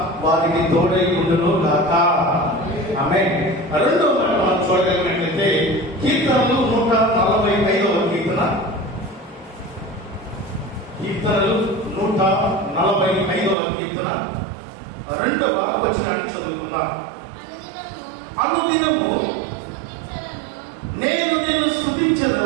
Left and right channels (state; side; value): drops out; left; at 13.6 s